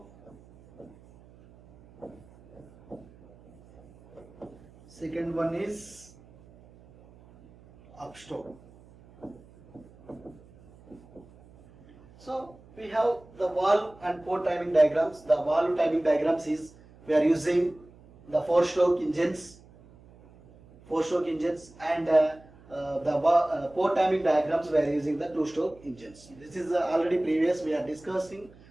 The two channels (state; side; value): noise; right; hum, 24 dB below the sound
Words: second one is upstroke. So we have the valve and port timing diagrams. The valve timing diagrams is we are using the 4-stroke engines, and the port timing diagrams we are using the 2-stroke engines. This is already previous we are discussed.